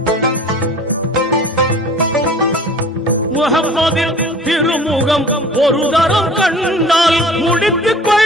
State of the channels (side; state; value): both; normal; correlation 0.46